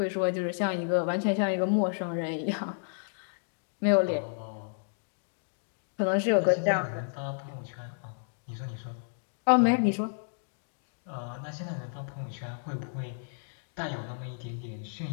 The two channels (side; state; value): right; silent; digital silence